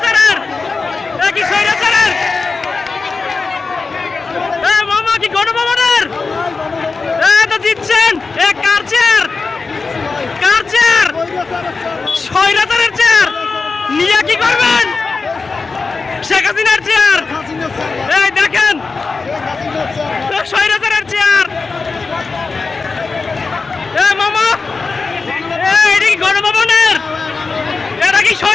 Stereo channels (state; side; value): quieter; right; 4.3 dB